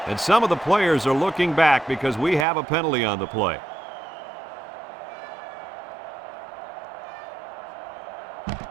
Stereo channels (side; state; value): left; drops out; at 2.5 s